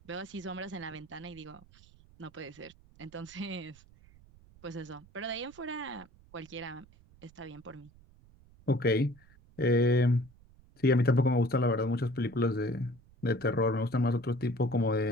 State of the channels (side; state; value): right; noise; rumble, 26 dB below the sound